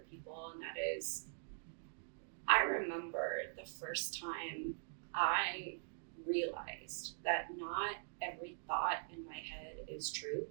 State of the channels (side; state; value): left; silent; digital silence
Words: people. And that is, I remember the first time I realized that not every thought in my head is true,